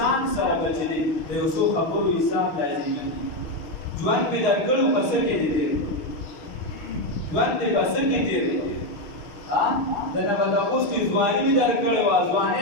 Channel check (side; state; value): right; late; 6.5 ms